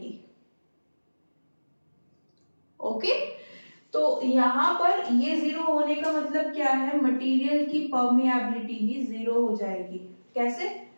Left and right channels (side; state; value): both; inverted; correlation -1.00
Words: ओके। तो यहाँ पर ये 0 होने का मतलब क्या है, मटेरियल की परमिएबिलिटी ही 0 हो जाएगी। कैसे,